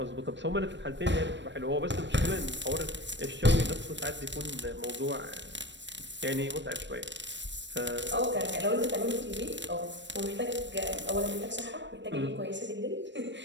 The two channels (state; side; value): late; left; 0.53 ms